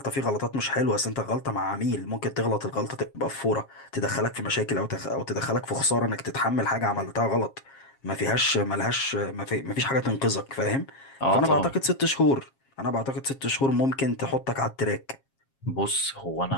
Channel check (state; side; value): late; right; 7.4 ms